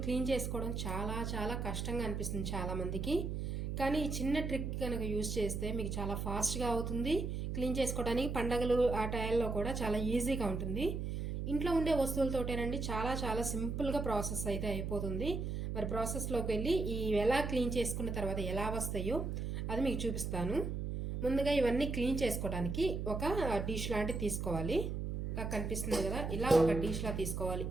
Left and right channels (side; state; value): right; noise; hum, 3 dB below the sound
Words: క్లీన్ చేసుకోవడం చాలా చాలా కష్టంగా అనిపిస్తుంది చాలామందికి. కానీ ఈ చిన్న ట్రిక్ కనుక యూజ్ చేస్తే మీకు చాలా ఫాస్ట్గా అవుతుంది. క్లీన్ చేసుకోవడానికి పండగలు ఆ టైంలో కూడా చాలా ఈజీగా ఉంటుంది. ఇంట్లో ఉండే వస్తువులతోటేనండి, చాలా చాలా సింపుల్గా ప్రాసెస్ అయితే అయిపోతుంది. మరి ప్రాసెస్లోకి వెళ్ళి ఈ ఎలా క్లీన్ చేసుకున్న తర్వాత ఎలా వస్తాయో అది మీకు చూపిస్తాను. ముందుగా ఇవన్నీ క్లీన్ చేసుకోవడానికి ఒక డిష్ లాంటివి తీసుకోవాలి. కనిపిస్తుంది కదా, ఇలా ఒక డిష్లా తీసుకోవాలి.